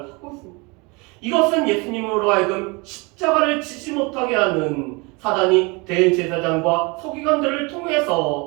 하고 있습니다. 이것은 예수님으로 하여금 십자가를 지지 못하게 하는 사단이 대제사장과 서기관들을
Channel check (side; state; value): left; quieter; 27.9 dB